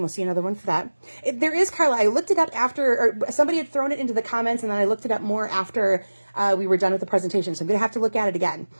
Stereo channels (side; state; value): both; inverted; correlation -1.00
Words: we'll see another one for that. There is, Carla, I looked it up after, or somebody had thrown it into the comments, and then I looked it up more after we were done with the presentation. So I'm going to have to look at it again